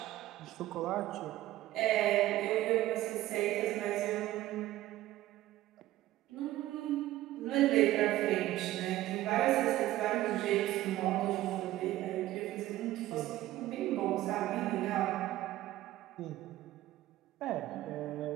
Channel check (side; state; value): left; quieter; 15.4 dB